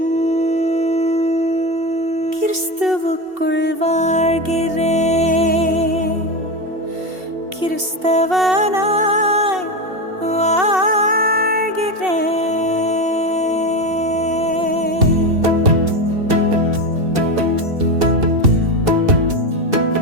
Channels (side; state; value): left; late; 2.7 ms